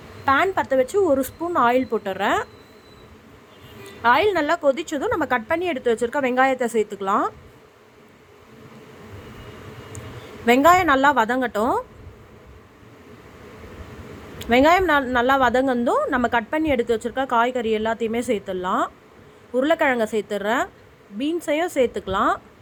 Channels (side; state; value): both; identical; correlation 1.00